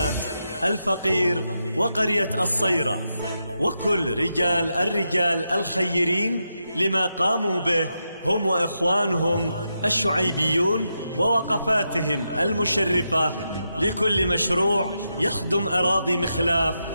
الفقير وقرية الصيرة، وكل الرجال الخيرين لما قاموا به هم وإخوانهم الشعيبيون ووقفاتهم المشرفة لكل مشروع يخدم أراضي مخلاف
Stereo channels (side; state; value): both; inverted; correlation -0.85